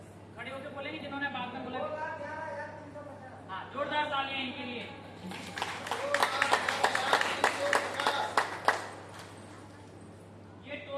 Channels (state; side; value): identical; both; correlation 1.00